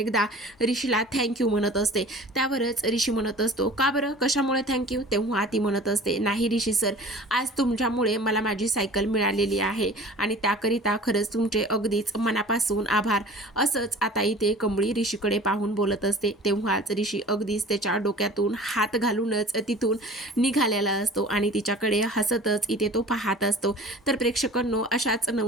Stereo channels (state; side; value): normal; both; correlation 0.43